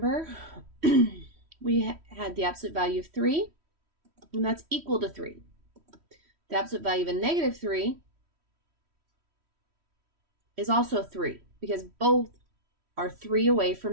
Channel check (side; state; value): left; late; 3.1 ms